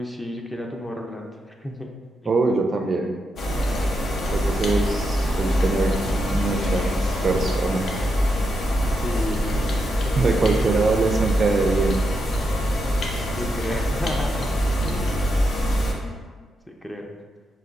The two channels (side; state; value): both; normal; correlation 0.84